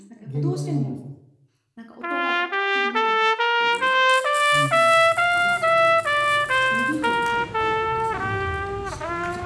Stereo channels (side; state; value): both; identical; correlation 1.00